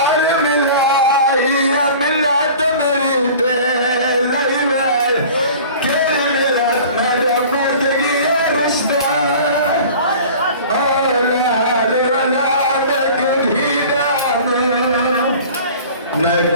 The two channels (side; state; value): both; inverted; correlation -0.43